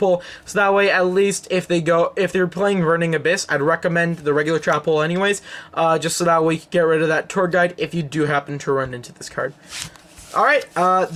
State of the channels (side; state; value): both; identical; correlation 1.00